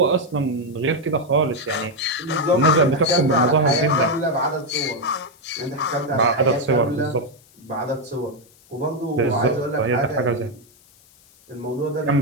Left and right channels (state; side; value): noise; left; hiss, 29 dB below the sound